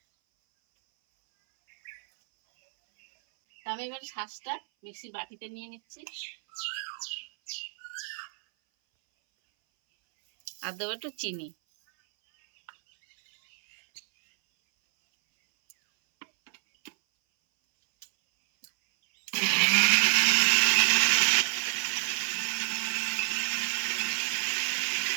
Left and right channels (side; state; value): left; silent; 59 dB below the other